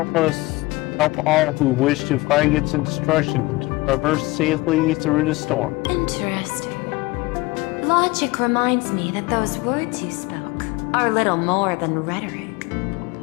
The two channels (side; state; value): right; quieter; 21.8 dB